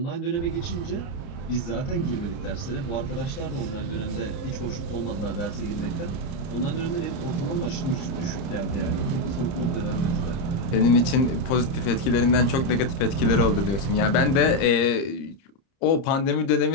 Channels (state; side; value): late; right; 30 ms